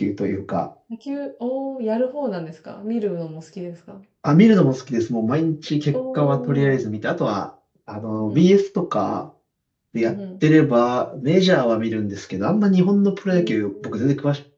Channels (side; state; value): both; identical; correlation 1.00